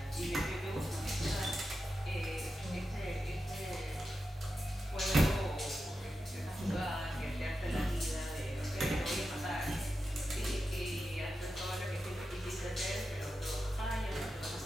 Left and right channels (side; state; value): both; normal; correlation 0.90